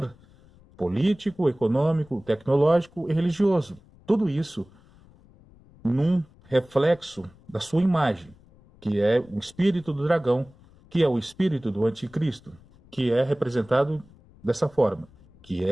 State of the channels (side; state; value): left; noise; rumble, 27 dB below the sound